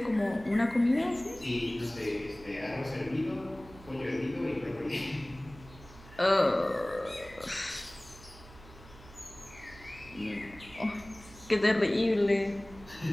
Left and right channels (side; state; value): right; noise; hum, 20 dB below the sound